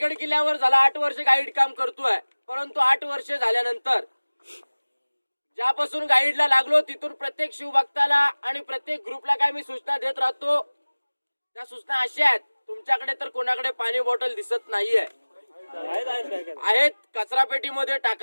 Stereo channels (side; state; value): both; inverted; correlation -1.00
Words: किल्ल्यावर झाला 8 वर्ष गाईड काम करतोय, परंतु 8 वर्ष झाल्यानंतर ज्यापासून गाईडला लागलो तिथून प्रत्येक शिवभक्ताला आणि प्रत्येक ग्रुपला काय मी सूचना देत राहतो. त्या सूचना अशा आहेत, तुमच्याकडे तर कोणाकडे पाणी बॉटल दिसत नाहीये, आहेत कचरा पेटीमध्ये